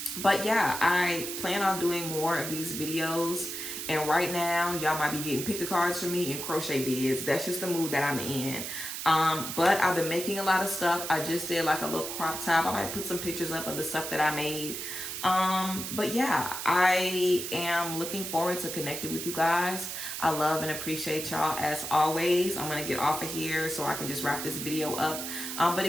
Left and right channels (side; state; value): right; noise; hiss, 6 dB below the sound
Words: But yeah, I plan on doing more of these videos. And right now, y'all might be getting pick a cards from me and crochet bids. That's just the mood that I'm in. But I've been making a lot of stuff. I just did like a little crop top. I might put some pictures up of the stuff that I made. But yeah, I am looking forward to connecting with you guys. I love and appreciate y'all as always. I'm gonna get off of here so I can just wrap this video up. But